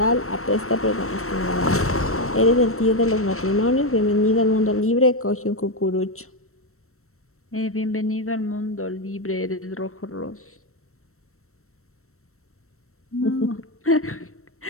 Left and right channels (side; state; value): right; late; 0.63 ms